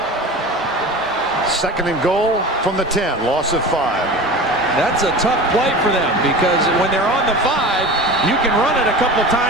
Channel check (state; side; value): normal; both; correlation 0.33